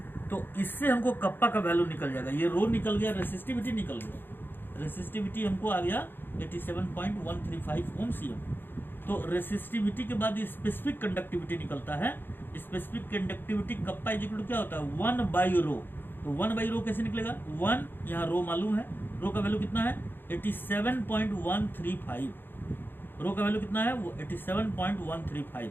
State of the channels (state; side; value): late; right; 0.098 ms